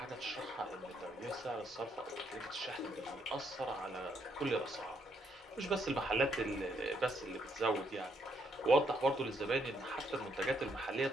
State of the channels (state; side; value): normal; both; correlation 0.74